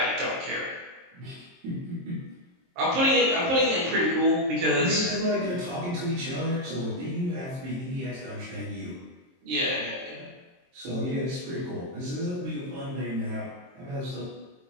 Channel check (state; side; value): late; left; 23 ms